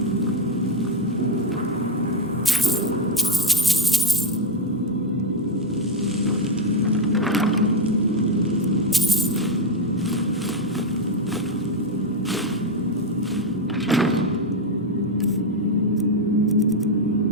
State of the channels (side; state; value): both; normal; correlation 0.07